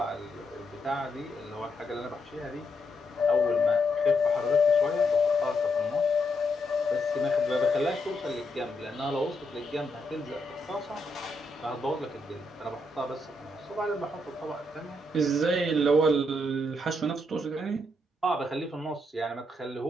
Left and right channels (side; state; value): both; normal; correlation 0.79